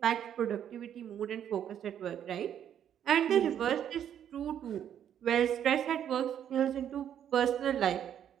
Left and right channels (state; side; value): quieter; left; 9.6 dB